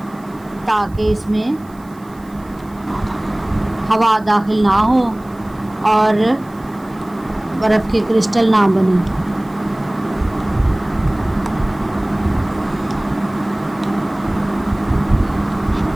ताकि इसमें हवा दाखिल ना हो और बर्फ़ के क्रिस्टल ना बने।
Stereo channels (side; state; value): right; noise; hiss, 29 dB below the sound